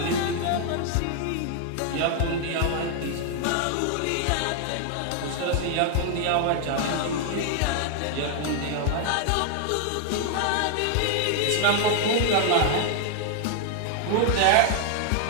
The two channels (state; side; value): different; both; correlation 0.00